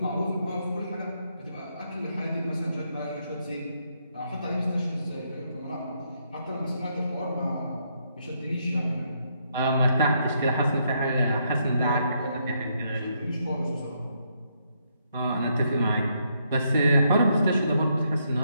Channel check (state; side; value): inverted; both; correlation -0.76